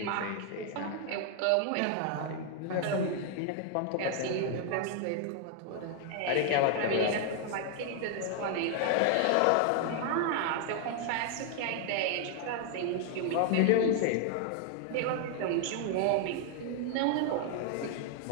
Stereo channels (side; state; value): both; different; correlation 0.00